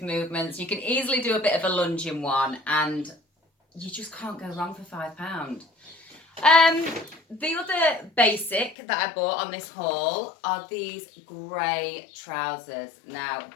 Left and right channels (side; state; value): right; drops out; at 8.8 s